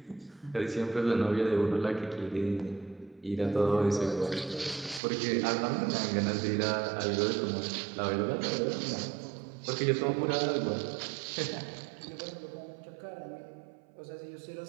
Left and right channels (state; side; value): drops out; left; at 5.0 s